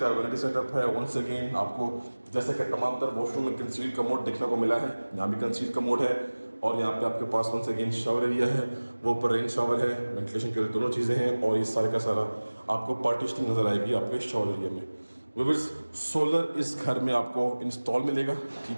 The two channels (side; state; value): both; inverted; correlation -1.00